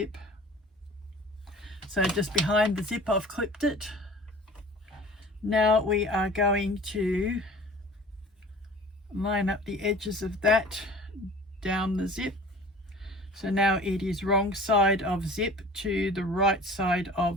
So just behind the zip I've clipped it. Now we are going to line up the edges of that down the zip. So now it is wrong side of zip to the right side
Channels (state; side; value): normal; both; correlation 0.43